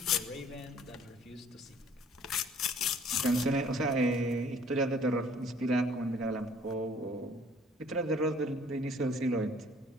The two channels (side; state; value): both; normal; correlation 0.55